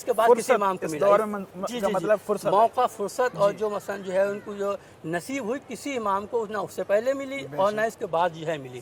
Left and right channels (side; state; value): both; identical; correlation 1.00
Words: کے بعد کسی امام کو ملا۔ جی جی جی، موقع فرصت اور جو مثلا جو ہے ان کو جو نصیب ہوئی کسی امام کو نہ اس سے پہلے ملی اور نہ اس کے بعد جو ہے ملی۔